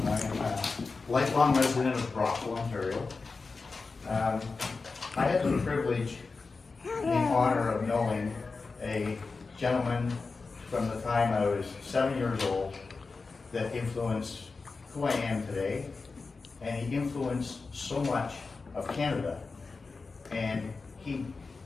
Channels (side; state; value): right; quieter; 4.2 dB